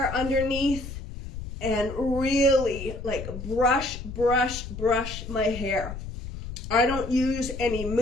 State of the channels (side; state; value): left; noise; rumble, 9 dB below the sound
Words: underneath and really like brush my hair. I don't use any